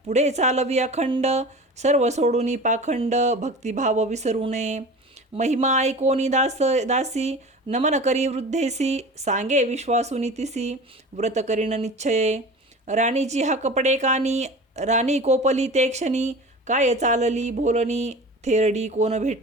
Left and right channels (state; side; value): normal; both; correlation 0.36